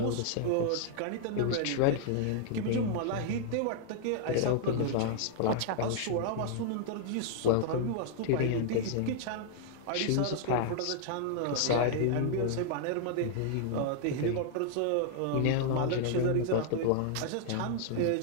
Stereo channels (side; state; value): both; different; correlation -0.01